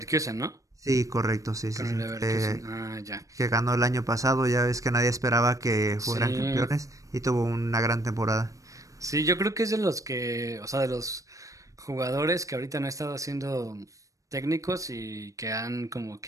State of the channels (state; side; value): late; left; 0.16 ms